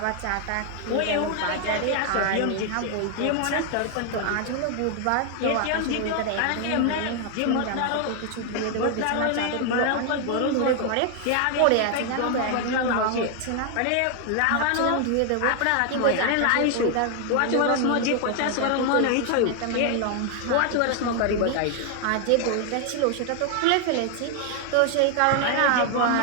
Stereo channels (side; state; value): both; different; correlation 0.00